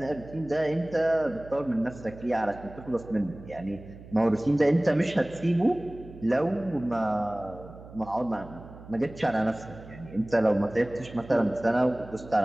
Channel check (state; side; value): noise; right; hum, 17 dB below the sound